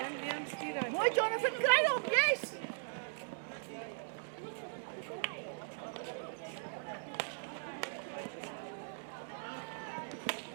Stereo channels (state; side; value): silent; left; digital silence